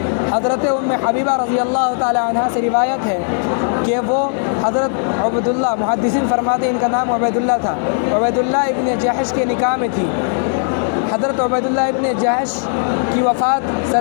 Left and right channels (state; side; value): silent; right; digital silence